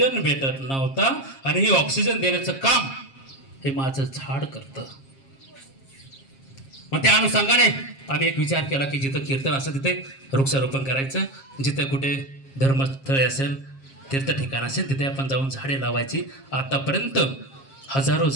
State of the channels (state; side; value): late; right; 7.4 ms